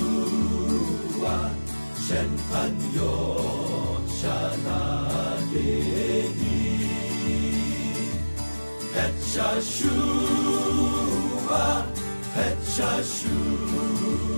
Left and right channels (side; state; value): both; inverted; correlation -1.00